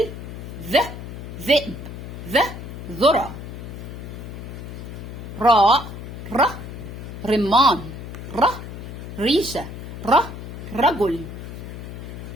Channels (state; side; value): noise; left; hum, 10 dB below the sound